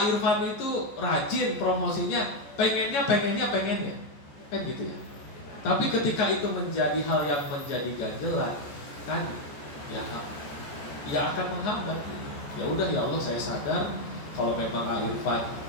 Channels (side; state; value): right; late; 14 ms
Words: Irfan itu rajin promosinya, pengennya, kan gitu ya. Tapi ketika itu menjadi hal yang menjadi ganjelan, kan ya akan menghambat. Ya udah ya Allah, saya sadar kalau memang A Irfan